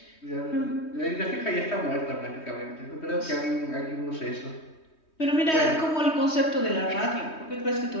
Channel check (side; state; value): right; late; 3.2 ms